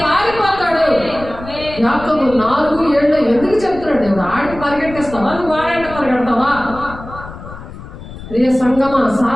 పారిపోతాడు. యాకోబు 4:7 ఎందుకు చెప్తున్నాడు దేవుడు? ఆడికి పరిగెట్టిస్తావా? నువ్వు వాడంట పరిగెడతావా? ప్రియ సంగమా,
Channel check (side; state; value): left; noise; rumble, 14 dB below the sound